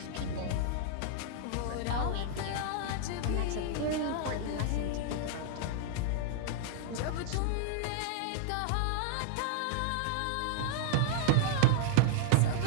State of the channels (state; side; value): different; both; correlation -0.01